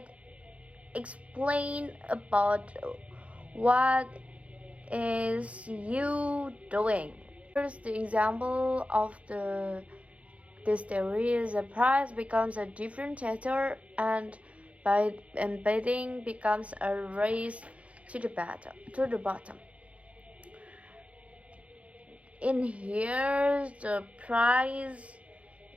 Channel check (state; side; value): late; left; 0.064 ms